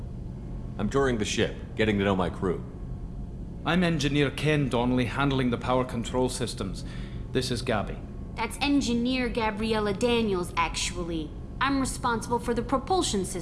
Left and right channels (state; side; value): identical; both; correlation 1.00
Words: I'm touring the ship, getting to know my crew. I'm Engineer Ken Donnelly, handling the power control systems. This is Gabby. That's Engineer Gabriella Daniels, actually. I'm responsible for the propulsion